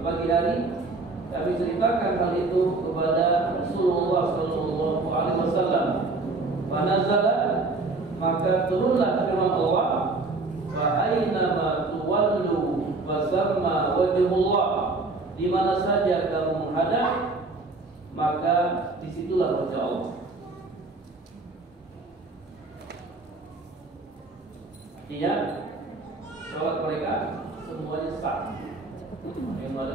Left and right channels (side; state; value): left; quieter; 3.5 dB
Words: hari kami ceritakan hal itu kepada Rasulullah sallallahu alaihi wasallam. Fanazala, maka turunlah firman Allah, fa aina ma tuwallu fasamma wajhullah. Di mana saja kamu menghadap, maka disitulah wajah Allah. Artinya sholat mereka semuanya sah. Ada yang